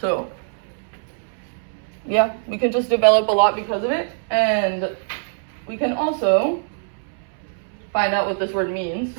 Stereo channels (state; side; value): silent; left; 64 dB below the other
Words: So yeah, we can just develop a lot because of it, and we can also find out what this word means